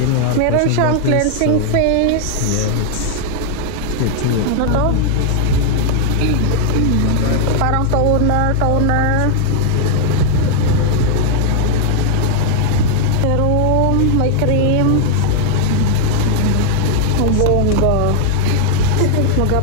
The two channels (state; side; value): different; both; correlation 0.00